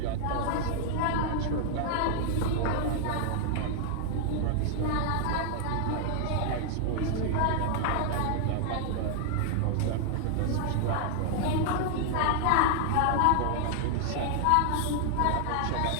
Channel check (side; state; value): both; different; correlation 0.00